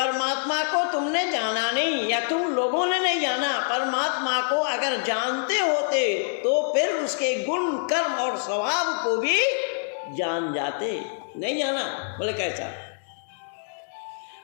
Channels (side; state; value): right; silent; digital silence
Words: को तुमने जाना नहीं या तुम लोगों ने नहीं जाना। परमात्मा को अगर जानते होते तो फिर उसके गुण कर्म और स्वभाव को भी जान जाते। नहीं जाना, बोले कैसा?